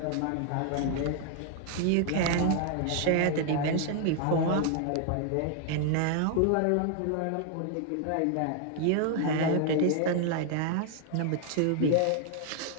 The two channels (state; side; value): different; both; correlation 0.00